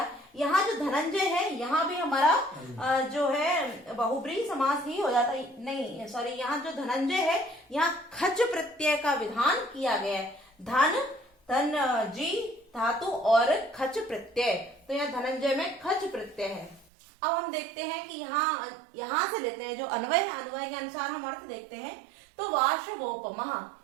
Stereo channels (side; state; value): left; drops out; at 16.9 s